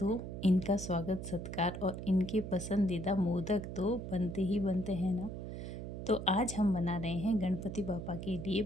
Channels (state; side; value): noise; right; hum, 7 dB below the sound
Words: इनका स्वागत सत्कार और इनके पसंदीदा मोदक तो बनते ही बनते हैं ना। तो आज हम बना रहे हैं गणपति बप्पा के लिए